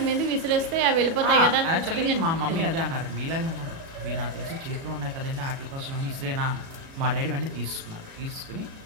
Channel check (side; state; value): left; late; 37 ms